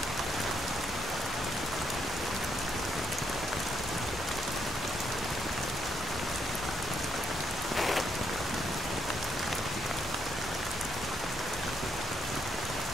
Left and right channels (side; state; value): both; normal; correlation 0.75